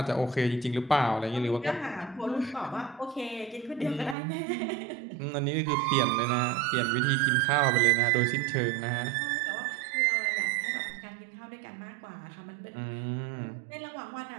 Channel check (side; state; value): left; drops out; at 4.2 s